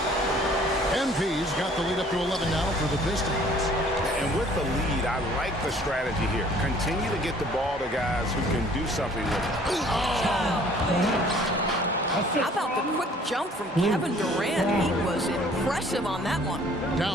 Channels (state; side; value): normal; both; correlation 0.55